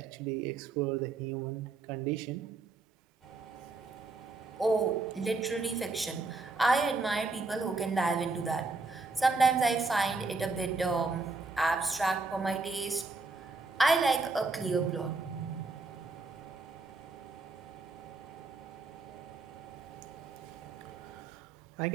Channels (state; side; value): quieter; left; 3.7 dB